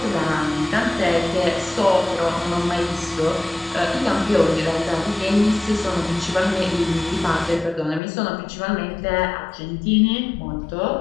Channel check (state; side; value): drops out; right; at 8.0 s